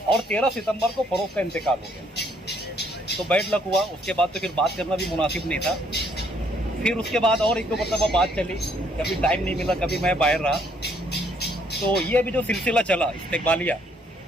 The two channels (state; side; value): normal; both; correlation 0.67